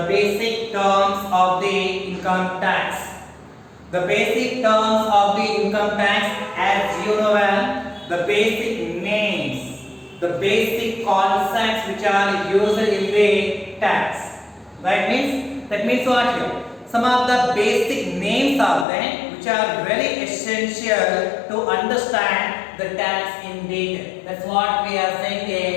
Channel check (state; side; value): drops out; right; at 18.9 s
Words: basic terms of the income tax. The basic terms of the income tax, as you know well, the basic names, the basic concepts which are used in the tax. That means what here? Some of the basic names are there which are very essential to understand the tax in detail. That's what we are saying,